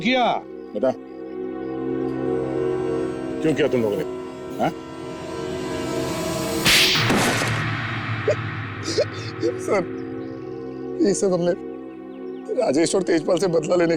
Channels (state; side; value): identical; both; correlation 1.00